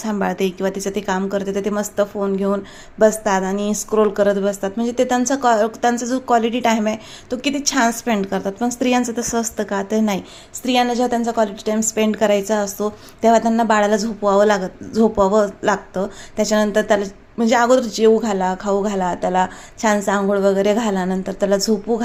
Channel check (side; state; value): both; identical; correlation 1.00